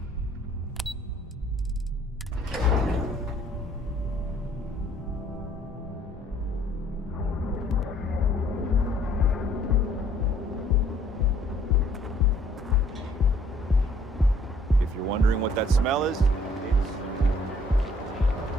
If you're wondering what that smell is,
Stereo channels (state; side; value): normal; both; correlation 0.60